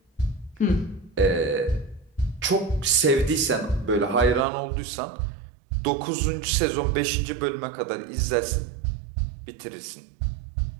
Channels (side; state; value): left; drops out; at 4.5 s